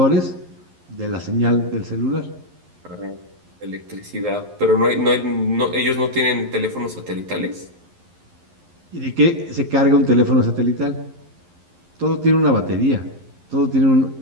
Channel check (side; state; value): left; late; 11 ms